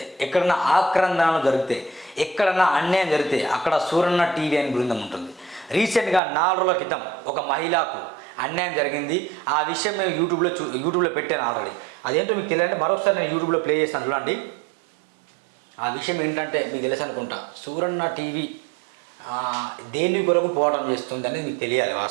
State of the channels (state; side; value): drops out; left; at 6.2 s